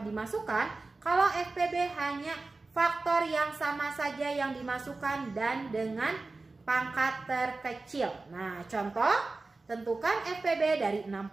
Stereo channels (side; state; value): left; quieter; 3.5 dB